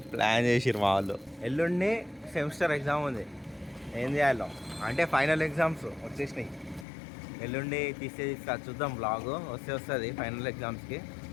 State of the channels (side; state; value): right; drops out; at 6.9 s